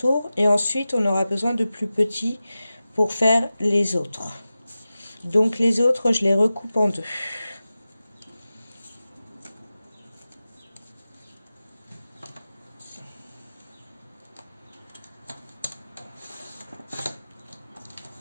Et ensuite, on aura besoin de plus petits pour faire les autres. Donc les autres, je les recoupe en deux.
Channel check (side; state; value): both; inverted; correlation -0.95